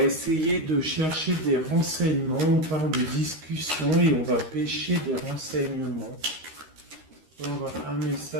essayer de chercher des renseignements, on parle de discussion et on va pêcher des renseignements. On va un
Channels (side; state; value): left; late; 13 ms